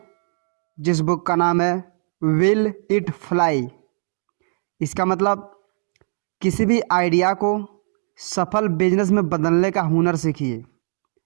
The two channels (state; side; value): silent; left; digital silence